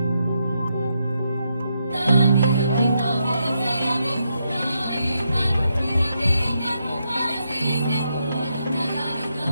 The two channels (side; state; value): both; inverted; correlation -0.81